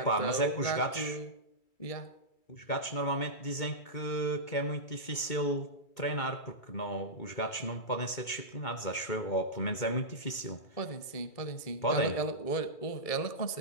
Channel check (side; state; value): right; late; 2.2 ms